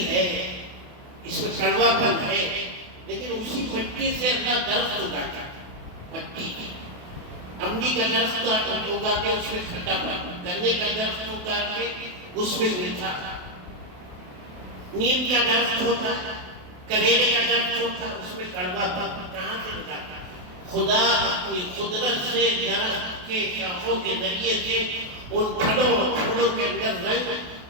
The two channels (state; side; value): late; left; 28 ms